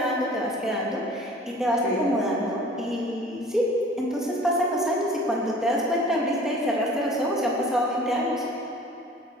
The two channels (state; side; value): normal; both; correlation 0.47